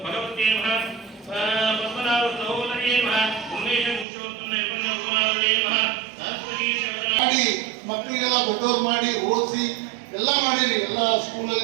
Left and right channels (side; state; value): left; drops out; at 4.0 s